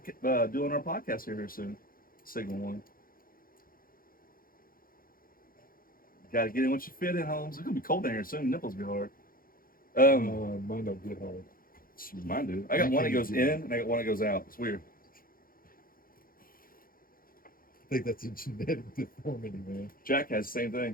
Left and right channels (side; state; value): right; late; 0.42 ms